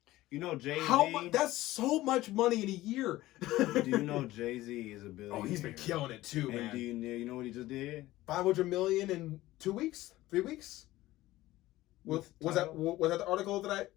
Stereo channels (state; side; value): quieter; right; 16.8 dB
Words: Jay-Z. That's so much money in a year. Do you know Jay-Z is a billionaire? Oh, he's been killing it too, man. And do you know what he just did? 500 million in 2 weeks, 3 weeks. Was that the article that I